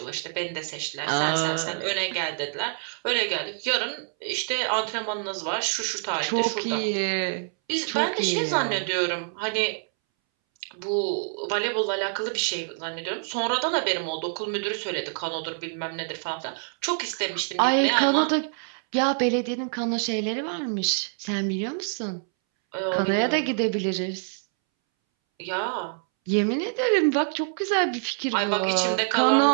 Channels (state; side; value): silent; left; 61 dB below the other